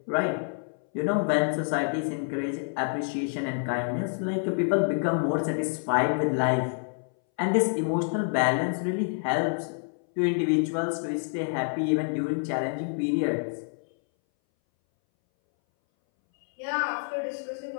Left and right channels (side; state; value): right; silent; 60 dB below the other